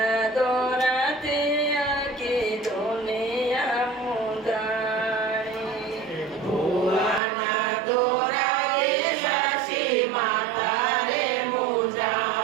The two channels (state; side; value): drops out; left; at 7.2 s